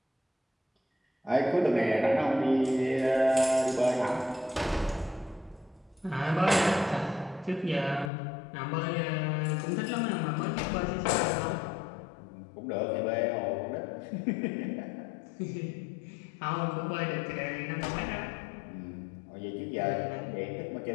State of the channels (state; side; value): drops out; right; at 8.1 s